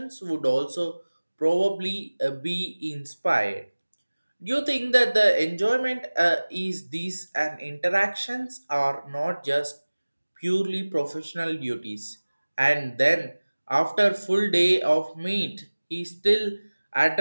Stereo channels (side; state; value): both; inverted; correlation -1.00